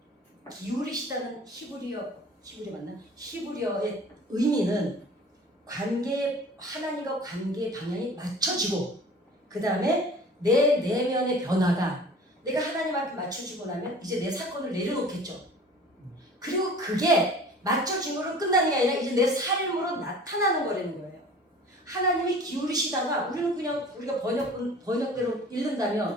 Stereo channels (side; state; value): both; normal; correlation 0.45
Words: 기울이시다는 히브리어의 의미는 하나님과 관계의 방향이 맞춰지고 그 다음에 내 내면의 변화가 내가 하나님 앞에 맞춰지고 나면 이제 내 사건을 내려놓겠죠. 그리고 그게 맞춰짐으로 끝나는 게 아니라 이제 내 삶으로 나타나는 거라는 거예요. 하나님이 기울이시다가 우리는 그냥 우리가 번역대로